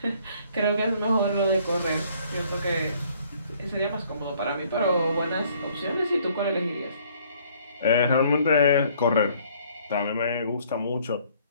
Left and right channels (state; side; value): inverted; both; correlation -0.61